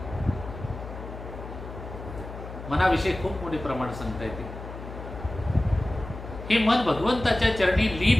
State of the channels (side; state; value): left; noise; hum, 11 dB below the sound